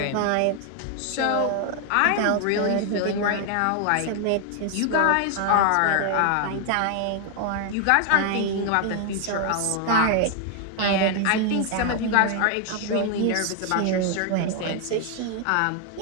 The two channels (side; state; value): both; different; correlation 0.00